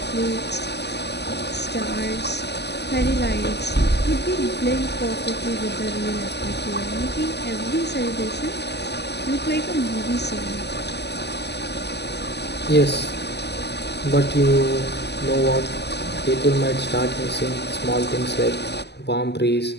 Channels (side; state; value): right; late; 0.49 ms